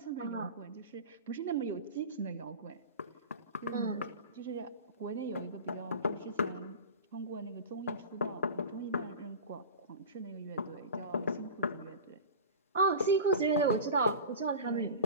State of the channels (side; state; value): both; inverted; correlation -0.32